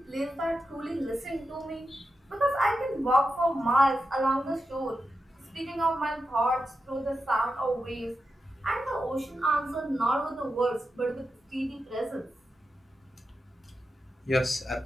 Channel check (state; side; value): normal; both; correlation 0.89